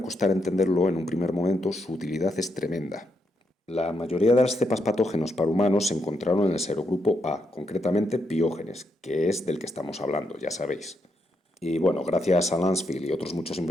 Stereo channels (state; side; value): normal; both; correlation 0.80